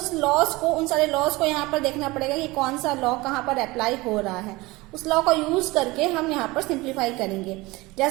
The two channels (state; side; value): quieter; left; 21.8 dB